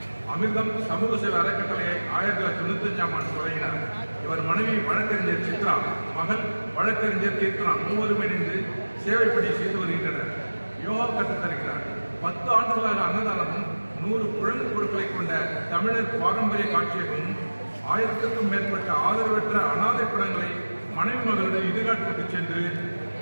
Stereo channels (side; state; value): both; inverted; correlation -1.00